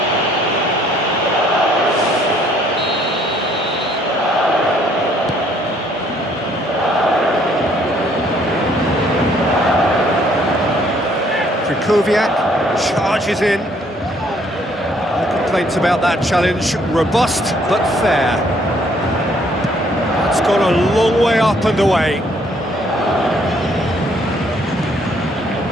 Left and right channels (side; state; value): both; normal; correlation 0.64